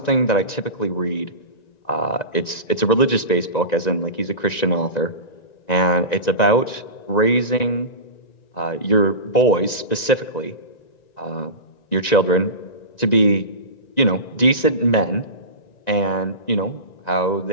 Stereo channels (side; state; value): right; late; 1.9 ms